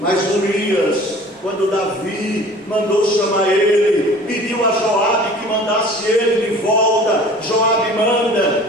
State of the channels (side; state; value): both; normal; correlation 0.46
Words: Urias, quando Davi mandou chamar ele, pediu a Joabe que mandasse ele de volta. Joabe manda,